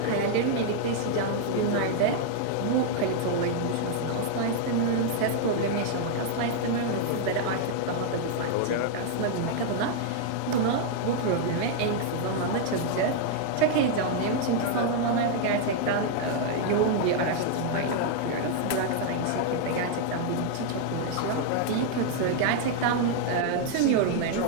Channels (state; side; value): different; both; correlation 0.00